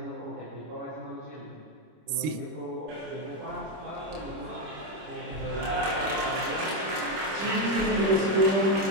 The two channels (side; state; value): left; late; 25 ms